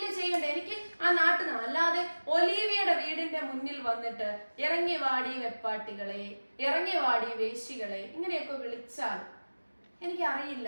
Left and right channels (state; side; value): inverted; both; correlation -1.00